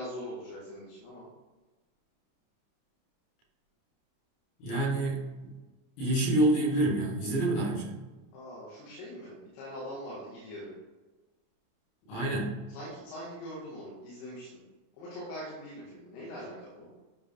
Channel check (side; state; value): right; late; 29 ms